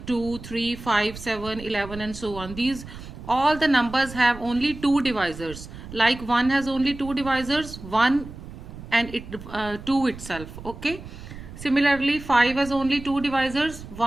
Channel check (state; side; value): noise; right; rumble, 13 dB below the sound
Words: 2, 3, 5, 7, 11 and so on. These all the numbers have only two divisors, like 1 has only two divisors, 1 and 2 itself. Okay, similarly 5 has only two divisors,